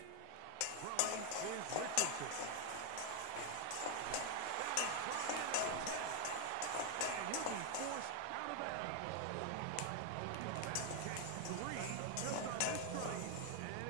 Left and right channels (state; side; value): different; both; correlation 0.00